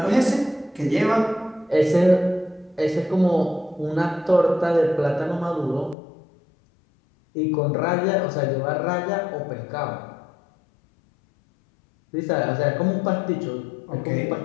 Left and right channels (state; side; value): drops out; right; at 6.0 s